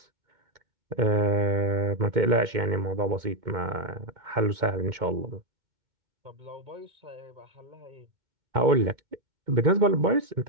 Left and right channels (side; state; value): left; late; 2.2 ms